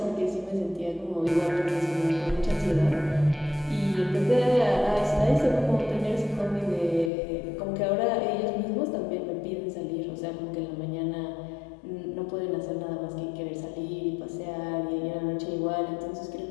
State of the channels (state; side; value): drops out; right; at 7.1 s